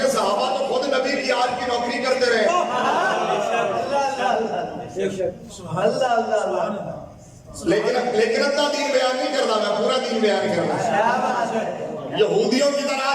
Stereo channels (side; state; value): both; identical; correlation 1.00